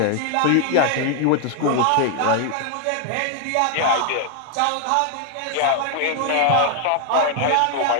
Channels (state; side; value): different; both; correlation 0.00